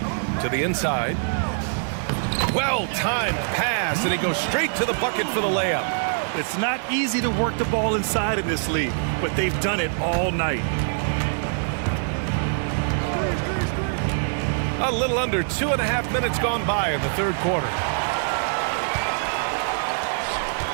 To the inside. Well-timed pass, and he goes straight to the bucket for the layup. It's not easy to work the ball inside in this league, but they've done it all night. A little under 2.5 minutes gone by in the third quarter.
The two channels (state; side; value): silent; left; digital silence